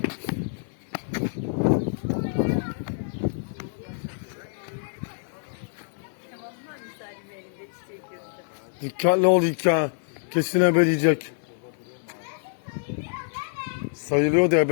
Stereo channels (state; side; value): silent; right; digital silence